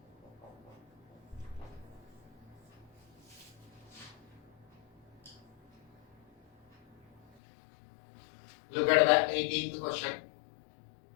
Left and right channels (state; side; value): drops out; right; at 7.2 s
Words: Look at the 18th question.